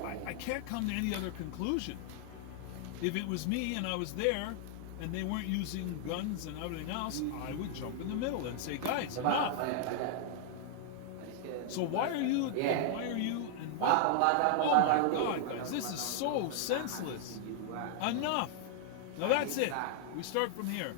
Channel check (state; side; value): different; both; correlation -0.01